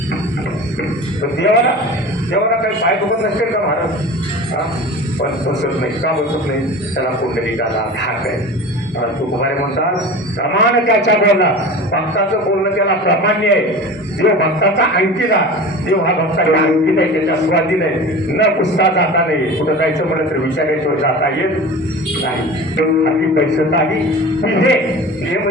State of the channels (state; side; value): normal; both; correlation 0.35